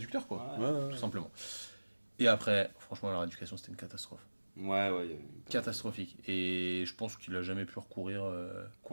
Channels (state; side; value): inverted; both; correlation -1.00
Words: quoi. Ouais, Ouais. Tout simplement. Et après, franchement, leur éducation, c'était une catastrophe. ouais. Il y a- Catastrophique. Et je pense qu'il a jamais pu recourir En vrai, c'est un